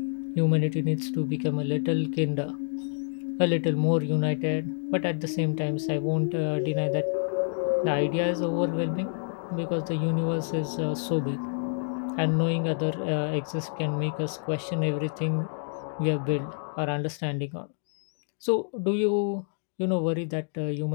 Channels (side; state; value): right; silent; digital silence